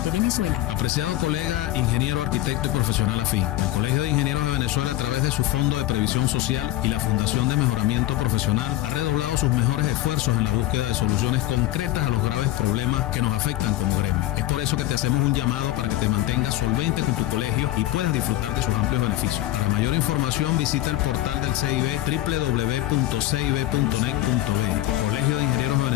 de Venezuela. Apreciado colega, ingeniero, arquitecto y profesional afín, el Colegio de Ingenieros de Venezuela, a través de su Fondo de Previsión Social y la Fundación de Mejoramiento Profesional, ha redoblado sus mejores esfuerzos en la búsqueda de soluciones concretas a los graves problemas que nos afectan como gremio. Es por eso que te hacemos un llamado para que te mantengas solvente con tu colegio y puedas disfrutar de sus amplios beneficios. Para mayor información visita el portal del CIB www.cib.net.be. Colegio de Ingenieros de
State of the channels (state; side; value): quieter; right; 15.6 dB